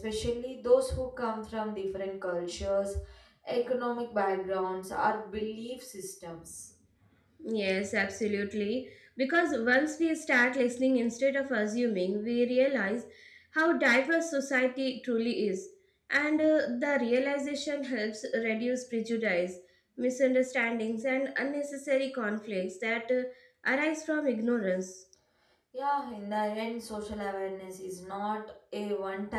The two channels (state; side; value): identical; both; correlation 1.00